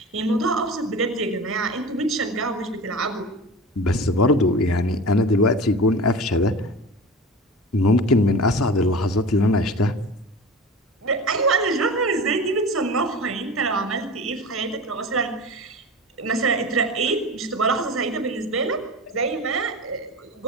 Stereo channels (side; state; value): both; normal; correlation 0.33